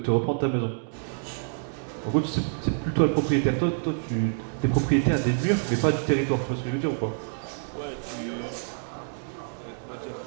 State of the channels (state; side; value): silent; left; 60 dB below the other